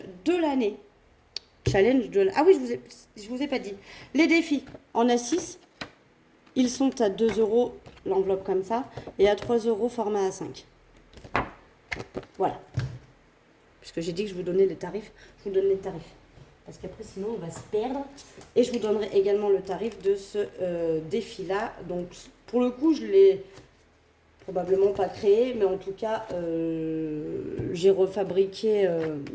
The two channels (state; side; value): identical; both; correlation 1.00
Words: de l'année. Ah oui, je vous ai pas dit. Les défis en A6, ils sont à 2 euros l'enveloppe comme ça, et à 3 euros format A5. Voilà. Puisque j'ai dit que je vous donnais les tarifs, je vous donne les tarifs. Parce qu'après, sinon, on va se perdre. Et je vous donnerai également le tarif de ce défi-là. Donc, pour le coup, je l'ai probablement pas créé, mais en tout cas, j'ai fabriqué